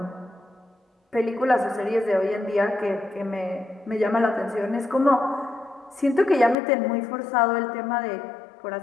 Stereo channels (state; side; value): drops out; right; at 6.6 s